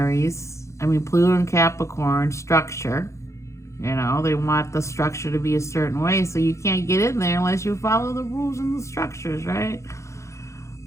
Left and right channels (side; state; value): right; late; 0.14 ms